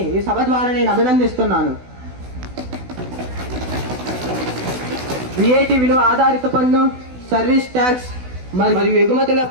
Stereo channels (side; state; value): left; late; 16 ms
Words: ఈ సభ ద్వారా నేను అభినందిస్తున్నాను. VAT విలువ ఆధారిత పన్ను, సర్వీస్ ట్యాక్స్ మరియు